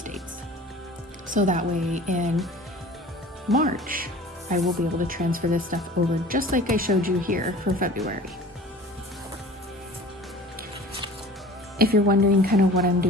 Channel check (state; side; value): normal; both; correlation 0.43